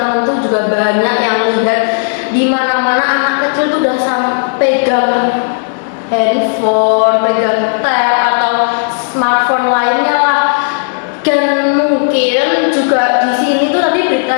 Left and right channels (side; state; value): right; silent; digital silence